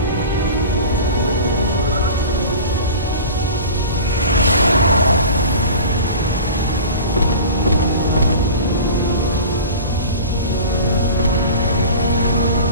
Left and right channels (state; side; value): inverted; both; correlation -0.37